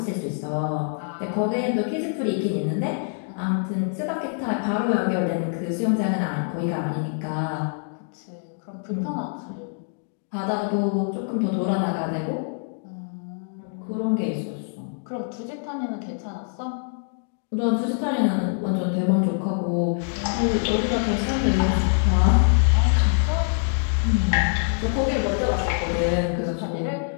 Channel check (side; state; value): right; silent; 62 dB below the other